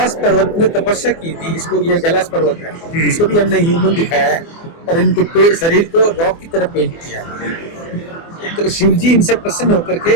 पर्वत में तपस्या की थी। इसको, ये कैलाश पर्वत है, इसको भी हमने ह्यूमन दिखाया है और इनके शरीर को रॉक की तरह पेंट किया। तो शिव जी इनसे प्रसन्न होकर के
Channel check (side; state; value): right; late; 24 ms